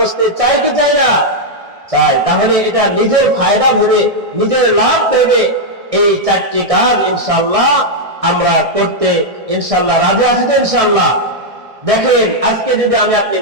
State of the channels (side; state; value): left; late; 1.6 ms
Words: চাই কি চাই না? চাই। তাহলে এটা নিজের ফায়দা ভেবে, নিজের লাভ ভেবে এই চারটি কাজ ইনশাআল্লাহ আমরা করতে ইনশাআল্লাহ রাজি আছি তো ইনশাআল্লাহ। দেখেন, আজকে যদি আমি আপনি